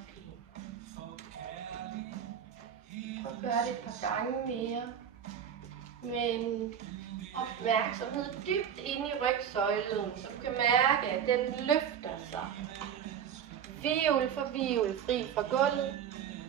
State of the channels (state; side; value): quieter; left; 8.5 dB